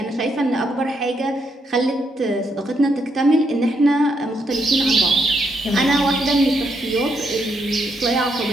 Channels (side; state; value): both; normal; correlation 0.77